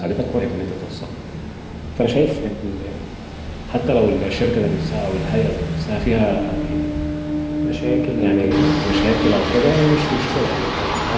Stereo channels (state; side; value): identical; both; correlation 1.00